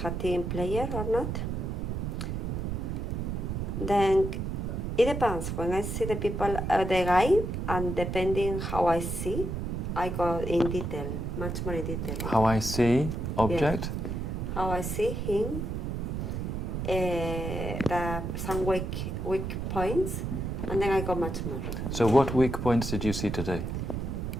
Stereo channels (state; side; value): noise; right; rumble, 3 dB below the sound